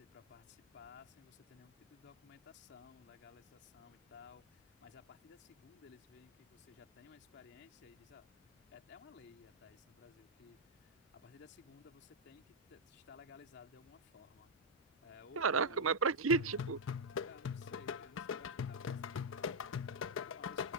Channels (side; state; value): both; normal; correlation -0.03